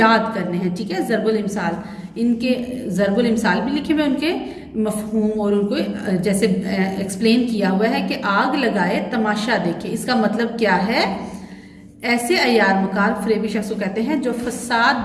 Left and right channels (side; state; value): both; identical; correlation 1.00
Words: करने हैं। ठीक है, ज़रबुल इमसाल, इनके ज़रबुल इमसाल भी लिखे हुए, उनके मफहूम और उनको जैसे एक्सप्लेन किया हुआ है कि आग लगाए तमाशा देखे। इसका मतलब क्या है? ऐसे अयार मकार फरेबी शख्स को कहते हैं जो